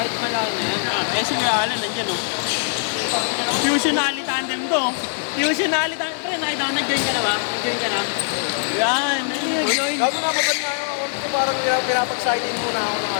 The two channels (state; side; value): silent; right; digital silence